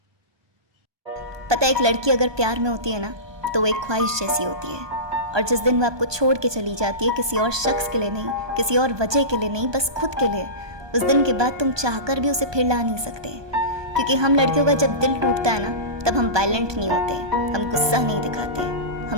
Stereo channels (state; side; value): late; left; 1.2 ms